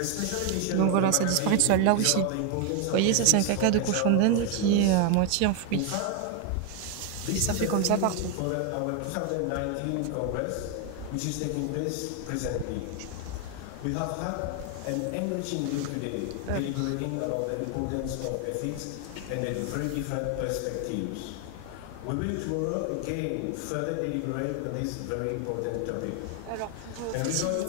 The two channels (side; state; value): both; different; correlation 0.01